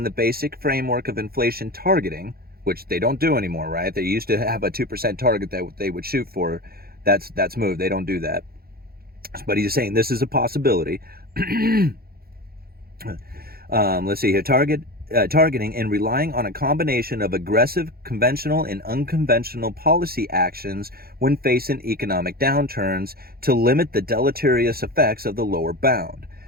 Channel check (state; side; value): late; left; 0.44 ms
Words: the basic framework of inflation targeting, which they don't do anymore, right? They used to have a 2% target that they would shoot for. That's moved. They don't do that. But he's saying this is a possibility. Let's see here. Targeting and relying on a combination of aggressive, conventional, and unconventional policy actions when facing economic downturns to limit the deleterious effects of the lower bound.